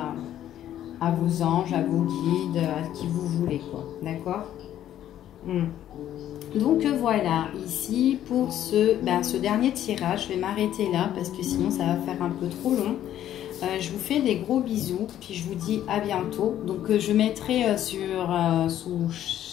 à vos anges, à vos guides, à qui vous voulez, quoi, d'accord? Donc voilà, ici pour ce dernier tirage, je vais m'arrêter là parce que sinon ça va faire un peu trop long. Je vous fais des gros bisous, puis je vous dis à bientôt. Donc je mettrai sous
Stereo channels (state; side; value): quieter; right; 11.6 dB